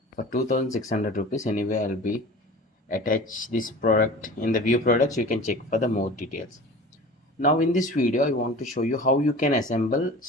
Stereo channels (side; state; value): both; normal; correlation 0.39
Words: for 2600 rupees. Anyway, I'll be attach this product in the view products. You can check for the more details. Now in this video, I want to show you how you can assemble